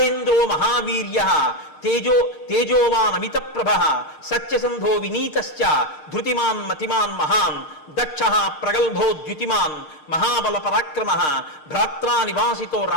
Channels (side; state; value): right; late; 6.5 ms